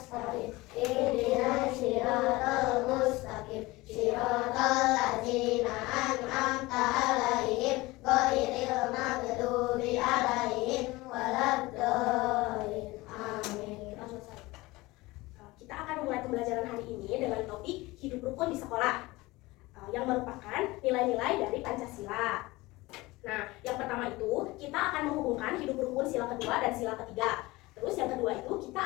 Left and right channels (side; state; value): right; quieter; 21.0 dB